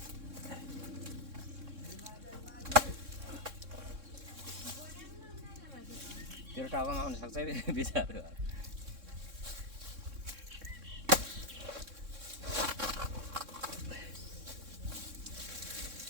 तेरो टाउकोमा आउन सक्छ बिचार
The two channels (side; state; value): left; late; 3.6 ms